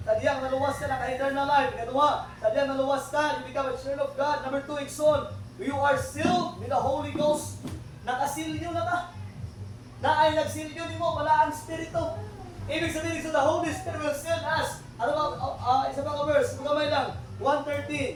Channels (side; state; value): both; identical; correlation 1.00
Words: sadyang naluwas ka na ka-eternal life. Ikaduha, sadyang naluwas ka, you become a child of God. Number 2, igsoon. You are sealed with the Holy Ghost. Nakasilyo na ka. Na ay nagsilyo ni mo, wala ang Espiritu. Ibig sabihin, so the Holy Spirit will seal us. Ano ba, isa pa ka verse, magamay lang.